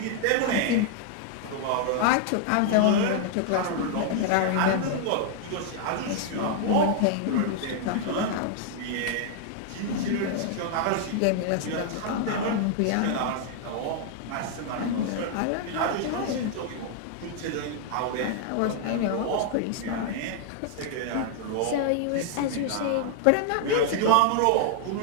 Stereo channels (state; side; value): different; both; correlation 0.00